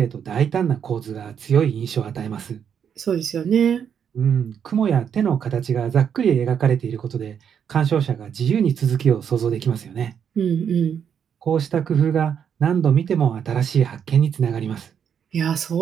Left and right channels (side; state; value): left; quieter; 7.9 dB